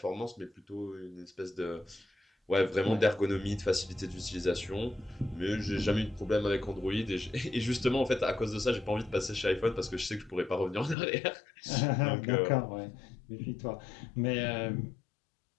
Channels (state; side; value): drops out; right; at 11.0 s